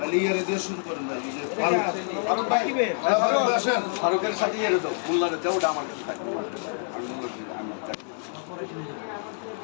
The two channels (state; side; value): silent; right; 60 dB below the other